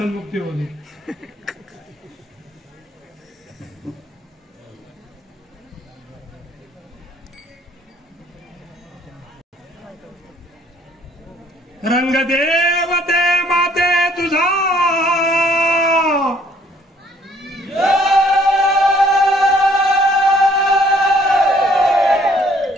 होते. रंग देवते माते तुझा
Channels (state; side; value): normal; both; correlation 0.61